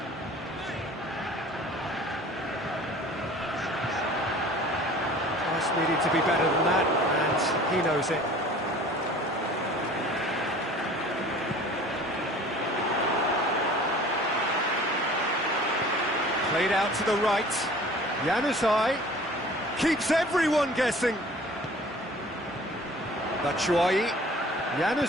Just needed to be better than that, and he knows it. Played out to the right. Januzaj keeps everyone guessing. Batshuayi.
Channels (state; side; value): normal; both; correlation 0.47